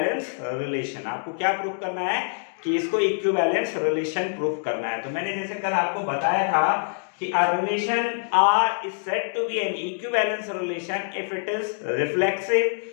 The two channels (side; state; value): right; silent; digital silence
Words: relation. आपको क्या प्रूफ करना है कि इसको इक्विवेलेंस रिलेशन प्रूफ करना है। तो मैंने जैसे कल आपको बताया था कि a relation R is said to be an equivalence relation if it is reflexive,